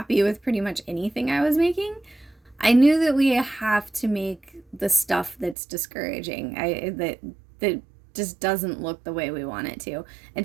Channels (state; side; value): drops out; left; at 5.6 s